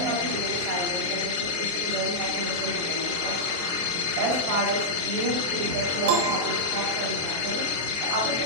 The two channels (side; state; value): left; late; 23 ms